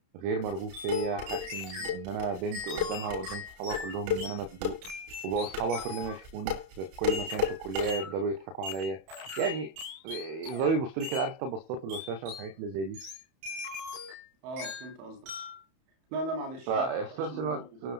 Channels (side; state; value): left; late; 31 ms